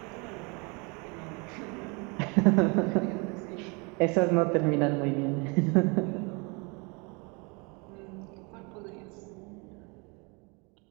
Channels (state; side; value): quieter; left; 30.7 dB